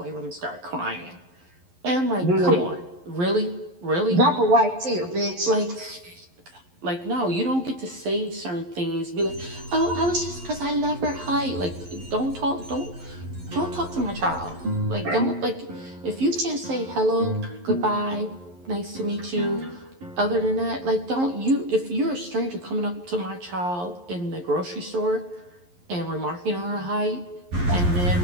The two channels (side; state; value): left; late; 11 ms